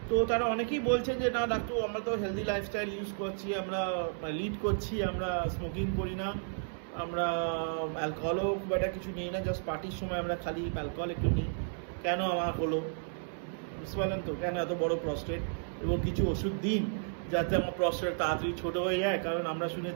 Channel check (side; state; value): left; silent; 56 dB below the other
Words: তো তারা অনেকেই বলছেন যে না ডাক্তার, আমরা তো হেলদি লাইফস্টাইল ইউজ করছি, আমরা লিড করছি, আমরা স্মোকিং করি না, আমরা অ্যালকোহলও খুব একটা কিছু নিই না, জাস্ট পার্টির সময় আমরা খালি অ্যালকোহল একটু নিই, কেন আমার হলো? বুঝতে পারলেন তো, কেন এত বড় প্রস্টেট? এবং কিছু ওষুধ দিন যাতে আমার প্রস্টেট তাড়াতাড়ি ছোটো হয়ে যায়, কারণ আমরা